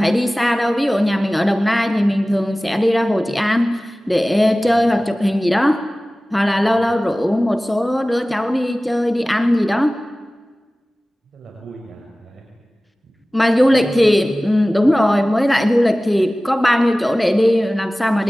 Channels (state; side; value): normal; both; correlation 0.97